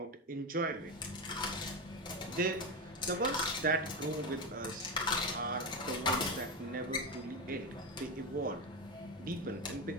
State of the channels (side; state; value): both; normal; correlation 0.15